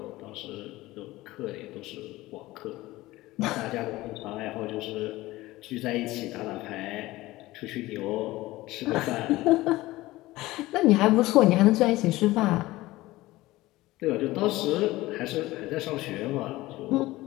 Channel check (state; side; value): quieter; right; 18.4 dB